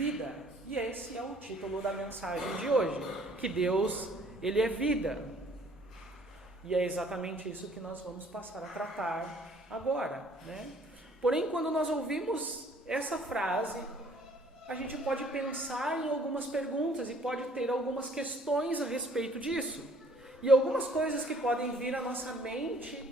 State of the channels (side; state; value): both; normal; correlation 0.58